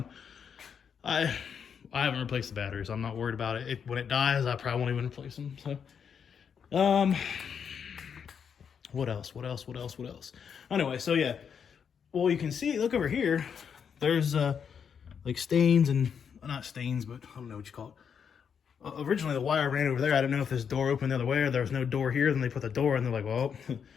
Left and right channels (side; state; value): right; quieter; 7.2 dB